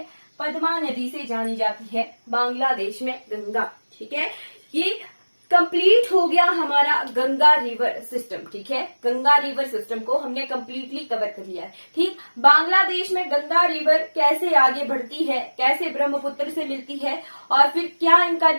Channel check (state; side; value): inverted; both; correlation -1.00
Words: पद्मा नदी से जानी जाती है बांग्लादेश में गंगा, ठीक है। ये कंप्लीट हो गया हमारा गंगा रिवर सिस्टम। ठीक है, गंगा रिवर सिस्टम को हमने कंप्लीटली कवर कर लिया है। ठीक, बांग्लादेश में गंगा रिवर कैसे आगे बढ़ती है, कैसे ब्रह्मपुत्र से मिलती है और फिर क्या इनका